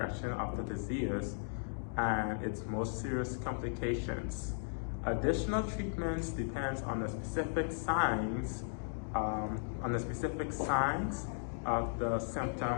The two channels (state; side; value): silent; right; digital silence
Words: of the disease and its most serious complications. Additional treatments depends on the specific signs, of the